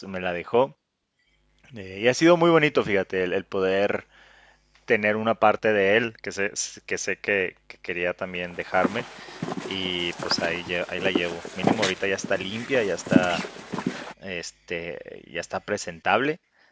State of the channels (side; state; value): both; identical; correlation 1.00